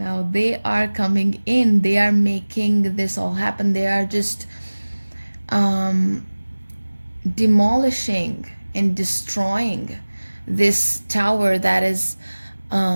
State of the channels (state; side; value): inverted; both; correlation -1.00